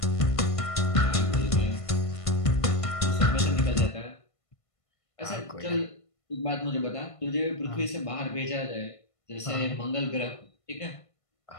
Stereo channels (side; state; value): right; late; 1.5 ms